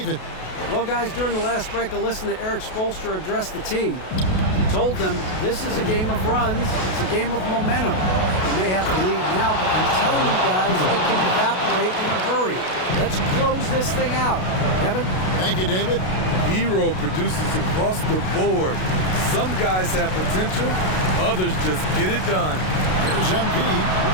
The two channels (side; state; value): right; late; 32 ms